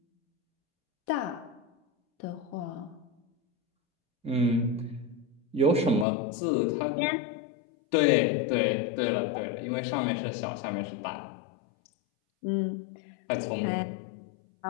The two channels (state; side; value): drops out; right; at 6.1 s